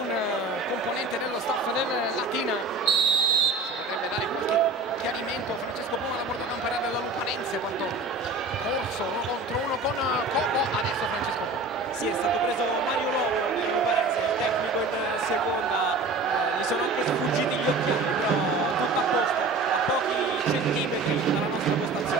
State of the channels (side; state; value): left; quieter; 3.4 dB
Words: componente dello staff del Latina, ci potrebbe dare qualche chiarimento Francesco Puma, la portacampera della Luparense, quanto Corso 1 contro 1 con Coco. Adesso Francesco Puma. Sì, è stato preso Mario Lobo per Luparense, il tecnico in seconda, gli sono anche sfuggiti gli occhiali, però tutto a posto, a pochi centimetri dalla nostra